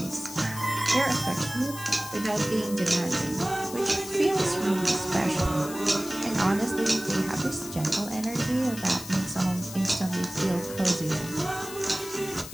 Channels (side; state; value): left; noise; hiss, 12 dB below the sound